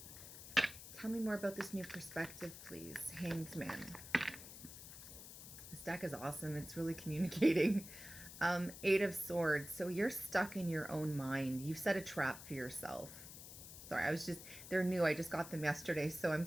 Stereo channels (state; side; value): noise; left; hiss, 13 dB below the sound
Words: Tell me more about this new perspective, please. Hanged Man. This deck is awesome. It's really communicating. Eight of Swords. So you're stuck in your own mind. You've set a trap for yourself. Sorry, they're new. I just got them yesterday, so I'm